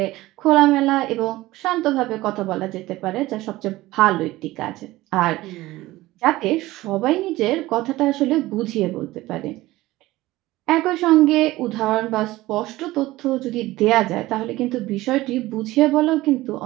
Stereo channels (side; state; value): left; quieter; 17.9 dB